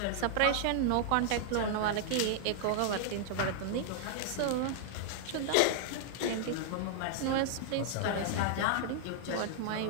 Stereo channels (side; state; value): both; different; correlation -0.01